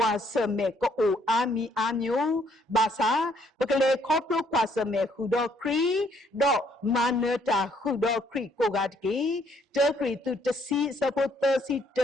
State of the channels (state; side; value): normal; both; correlation 0.67